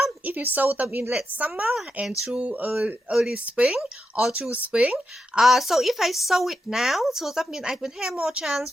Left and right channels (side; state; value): both; normal; correlation 0.85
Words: If you sow them in late summer and through early spring or through spring, so if I sow it now, so that means I will have more chance